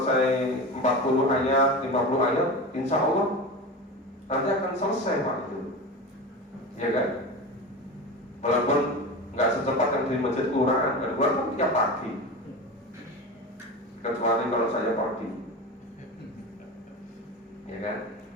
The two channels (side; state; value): both; normal; correlation 0.27